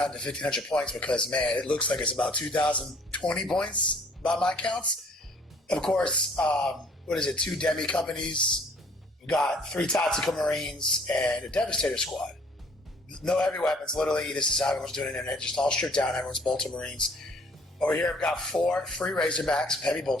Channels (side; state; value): both; normal; correlation 0.57